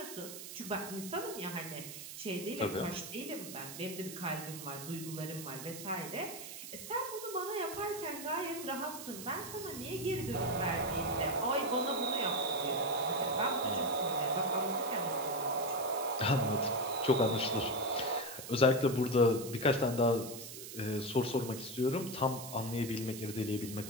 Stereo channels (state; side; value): noise; right; hiss, 10 dB below the sound